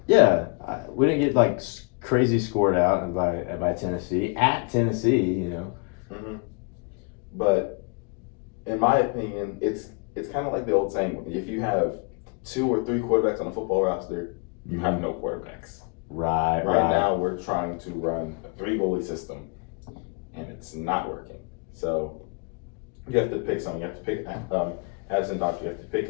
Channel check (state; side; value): quieter; right; 33.8 dB